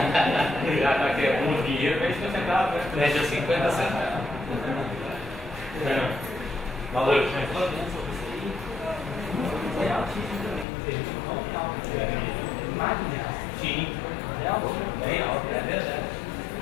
Já que é um dinheiro, vende 50 centavos, vende a 50 centavos. Valeu. Sim. Bem alto, é verdade.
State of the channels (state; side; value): drops out; right; at 10.7 s